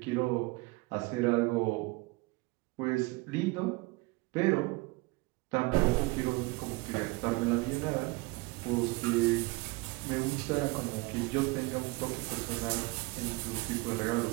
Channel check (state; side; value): quieter; left; 24.2 dB